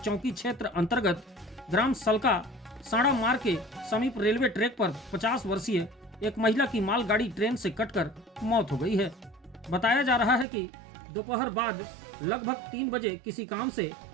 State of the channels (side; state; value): left; drops out; at 10.5 s